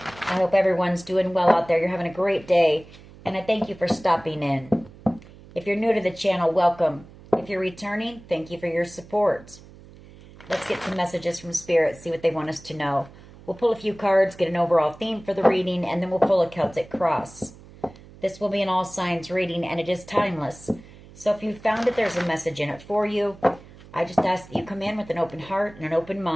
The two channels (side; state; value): right; noise; hum, 21 dB below the sound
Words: hope everyone's doing well out there. You're having a great day, and I thank you for stopping in. If you're new to the channel, welcome. If you're returning, thank you for your support. Let's get some messages from Spirit, see what they want us to know. We'll pull a few cards, get an overall theme for the reading, and then we'll pull a Celtic cross. This will be an all signs reading, and it is timeless. So if you found that there's a message in it for you, I just ask that you come in with an open heart and an open